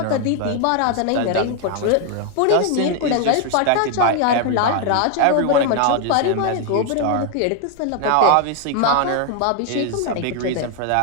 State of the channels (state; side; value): different; both; correlation 0.00